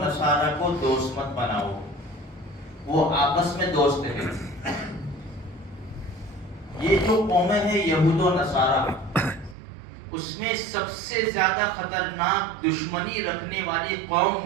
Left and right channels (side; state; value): left; drops out; at 9.6 s